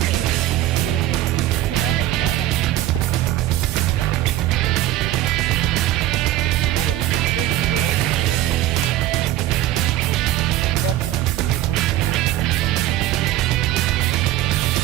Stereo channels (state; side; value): quieter; left; 14.3 dB